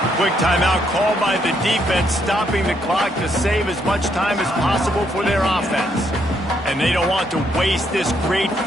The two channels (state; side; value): normal; both; correlation 0.74